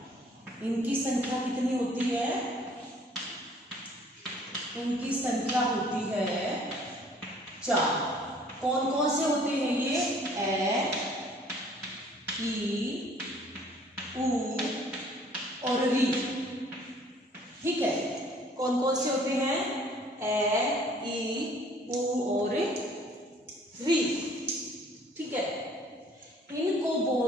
इनकी संख्या कितनी होती है? इनकी संख्या होती है 4। कौन कौन से होते हैं ये? ए, ई, ऊ और री। ठीक है, कौन कौन से होते हैं? ए, ई, ऊ और री। ठीक है, इनको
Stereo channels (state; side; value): normal; both; correlation 0.56